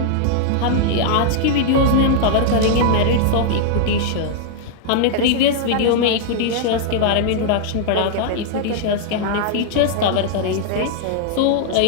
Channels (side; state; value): both; different; correlation -0.01